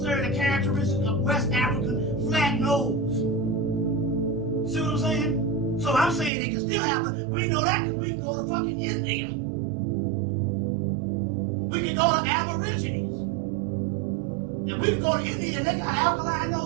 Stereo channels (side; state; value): left; drops out; at 6.3 s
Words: the characteristic of West African flat nose. See what I'm saying? So I'm saying they can still have it. We know that because we can go to fucking India. We can go to Aborigines. And we can go to India and they got alkaline